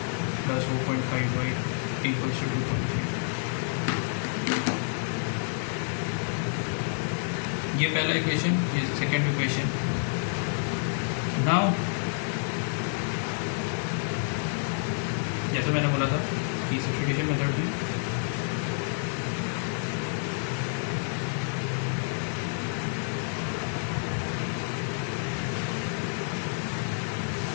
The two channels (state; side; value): silent; right; 59 dB below the other